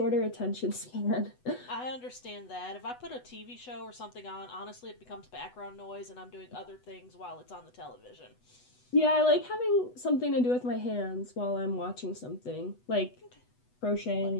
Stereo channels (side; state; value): right; late; 8.1 ms